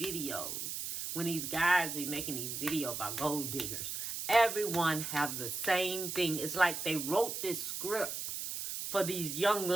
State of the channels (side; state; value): right; noise; hiss, 5 dB below the sound